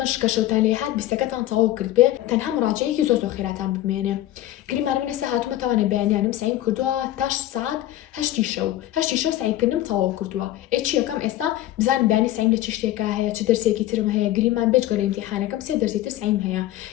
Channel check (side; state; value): right; quieter; 14.3 dB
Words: کە شەوتان لێ هات 20ەکەتان تەواو کرد بێ تەنها مراجعەیەکی زۆر خێراتان بمێنێ گریمان من ئێستا هاتوومە تاوانێ بەیانیانم سعیم کردووە تا ساعت 8 شەو سعیکردنم تەواو کردووە چی یەکەم ئێستا بزانم بانی سعیم لە چ شتێکە هەیە چ دەرسێکی ترم هەیە گریمان بێجگە لە ئیمتیحانەکەم 3 دەرسی تر سعیم هەیە